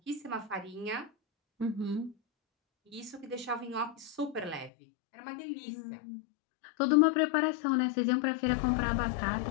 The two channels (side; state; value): right; drops out; at 4.7 s